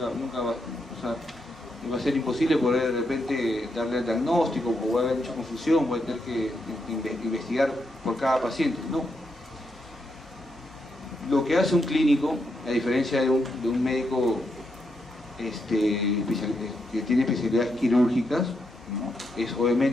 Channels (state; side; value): normal; both; correlation 0.81